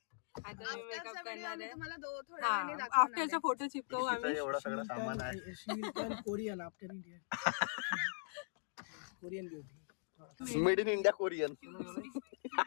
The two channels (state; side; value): silent; right; digital silence